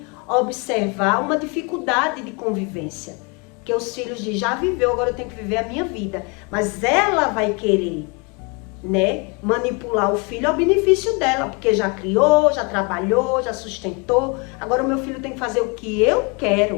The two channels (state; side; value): quieter; right; 31.7 dB